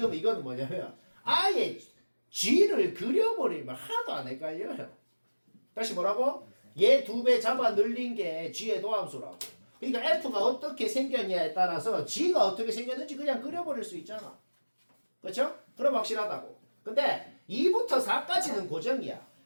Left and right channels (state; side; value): inverted; both; correlation -1.00